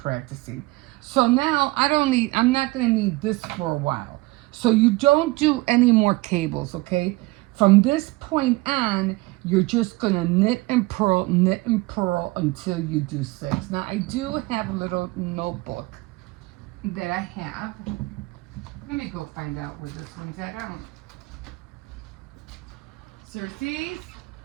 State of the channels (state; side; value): quieter; left; 21.4 dB